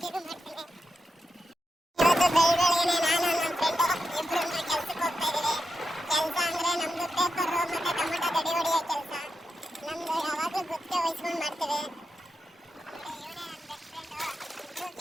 ಮಾಡ್ತೀನಿ. ಇವತ್ತು ಬೆಳಗ್ಗೆನೆ ನಾನು ನಮ್ಮ ಫ್ರೆಂಡು ಇಬ್ರು ಕೆಲ್ಸಕ್ಕೆ ಹೋಗ್ತಾ ಇದೀವಿ. ಕೆಲಸ ಅಂದ್ರೆ ನಮ್ದು ಪೇಪರ್ ಮತ್ತೆ ಟೊಮೆಟೊ ಗಡಿ ಹೊಡಿಯೋ ಕೆಲಸ. ನಮ್ದು ಯಾವಾಗಲೂ ಗುತ್ತಿಗೆ ವಹಿಸ್ಕೊಂಡು ಮಾಡ್ತೀವಿ.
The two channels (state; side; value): normal; both; correlation 0.88